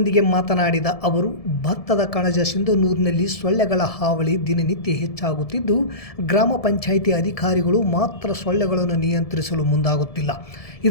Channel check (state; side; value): late; right; 1.7 ms